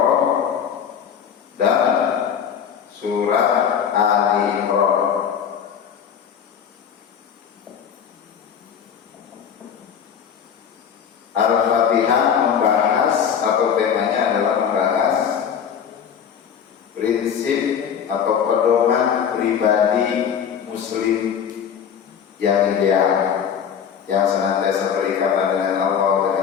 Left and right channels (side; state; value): right; quieter; 7.8 dB